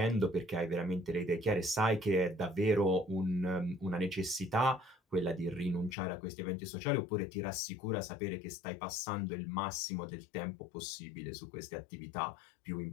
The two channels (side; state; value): right; drops out; at 6.0 s